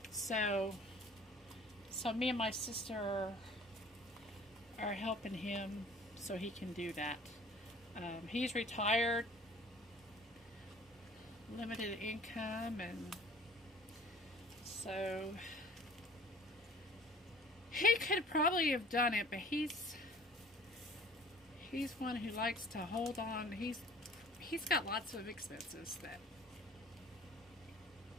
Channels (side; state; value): both; normal; correlation 0.50